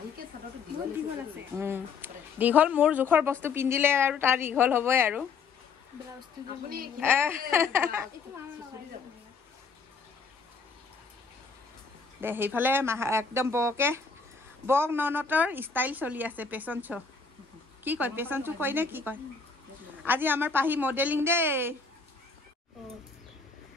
দীঘল মোৰ জোখৰ বস্তু পিন্ধিলে আৰু তাৰ দীঘল হ'বই আৰু দে সেইফালে একদম বক ননতৰ ষ্টাইল চলি আছে পেচন শ্ব' কি কয় পেচন শ্ব' কয় নে কি কয় আজি আমাৰ পাহি মডেলিং দেই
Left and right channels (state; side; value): quieter; right; 5.1 dB